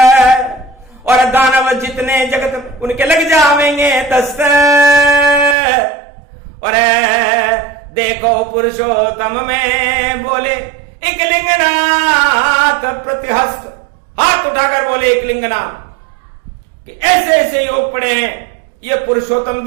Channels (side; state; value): left; drops out; at 5.6 s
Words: और दानव जितने जगत उनके लग जावेंगे दस्त। और देखो पुरुषोत्तम में बोले एक लिंगनाथ प्रतिहस्त, हाथ उठाकर बोले एक लिंगनाथ कि ऐसे ऐसे योग पड़े हैं। ये पुरुषोत्तम